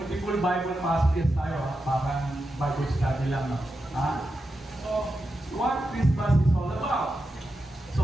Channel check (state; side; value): normal; both; correlation 0.89